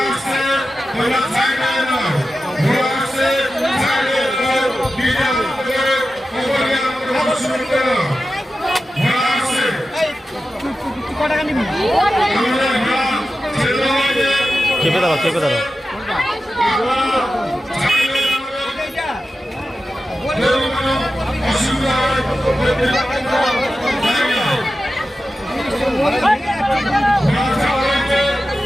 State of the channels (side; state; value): both; normal; correlation 0.92